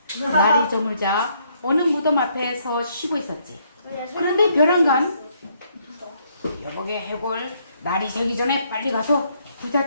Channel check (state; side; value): inverted; both; correlation -0.70